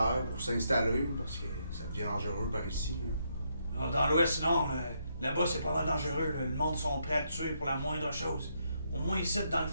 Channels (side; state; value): both; inverted; correlation -0.77